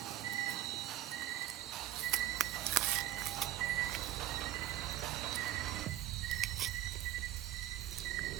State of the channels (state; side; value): quieter; left; 13.5 dB